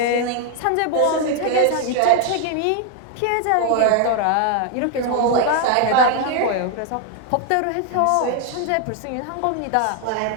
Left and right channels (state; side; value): different; both; correlation 0.00